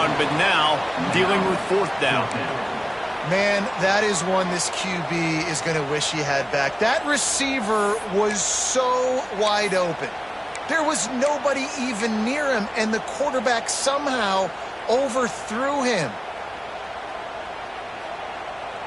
but now dealing with 4th down. Man, that is one this QB is going to wish he had back. That receiver was so wide open. There was nobody even near him, and the quarterback somehow overthrew him.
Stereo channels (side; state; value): both; identical; correlation 1.00